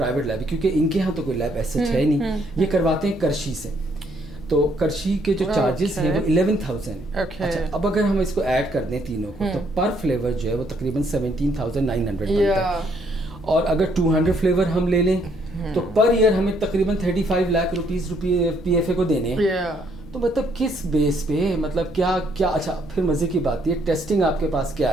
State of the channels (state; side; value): normal; both; correlation 0.69